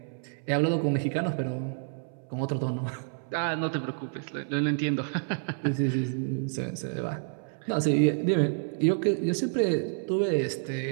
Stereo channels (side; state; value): left; silent; 59 dB below the other